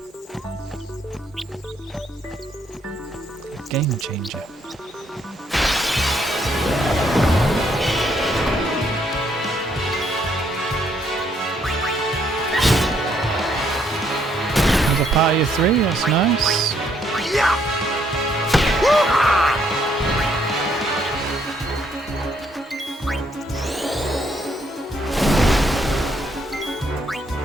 A game changer. There's a party of 3, that's nice. Yeah.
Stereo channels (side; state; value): both; normal; correlation 0.70